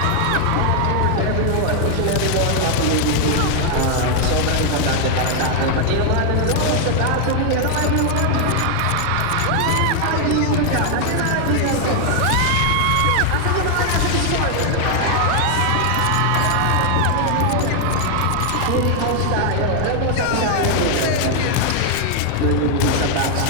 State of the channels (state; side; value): different; both; correlation 0.00